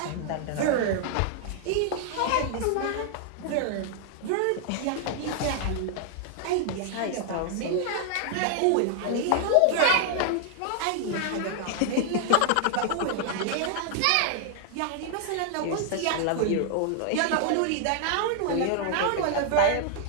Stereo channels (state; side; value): different; both; correlation -0.01